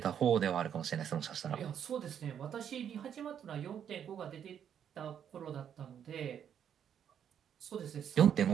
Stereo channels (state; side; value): quieter; left; 8.8 dB